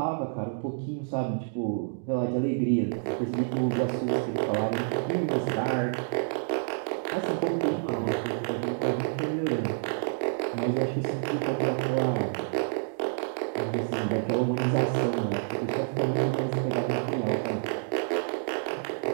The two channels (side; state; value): left; silent; digital silence